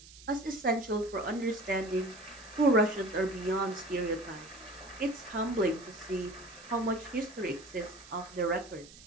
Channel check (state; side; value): noise; right; hiss, 19 dB below the sound